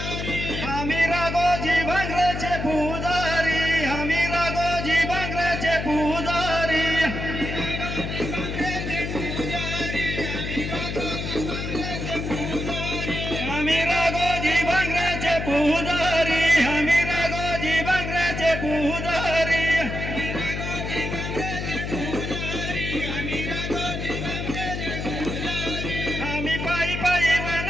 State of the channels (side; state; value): left; noise; hum, 4 dB below the sound